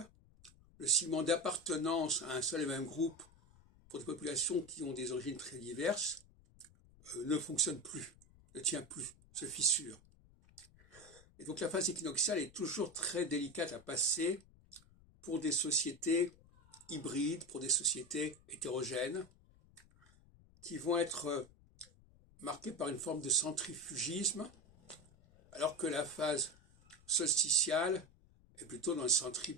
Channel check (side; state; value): left; noise; rumble, 26 dB below the sound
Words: le ciment d'appartenance à un seul et même groupe pour des populations qui ont des origines très diverses, ne fonctionne plus, ne tient plus, se fissure. Et donc la phase équinoxiale est toujours très délicate à passer pour des sociétés hybrides, pour des sociétés hétérogènes, qui vont être marquées par une forme de centrifugisme, alors que la phase solsticiale est plutôt dans le